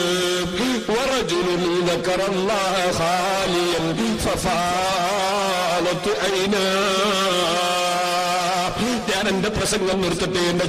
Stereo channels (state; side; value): identical; both; correlation 1.00